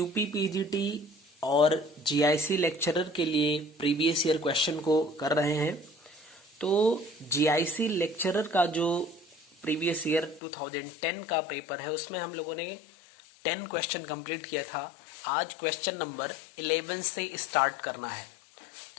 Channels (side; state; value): right; drops out; at 10.4 s